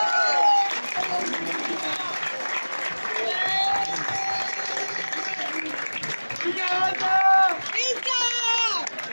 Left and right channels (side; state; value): both; inverted; correlation -1.00